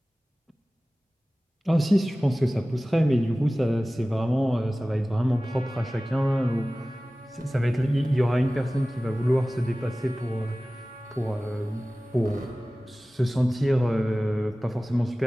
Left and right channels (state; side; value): normal; both; correlation 0.97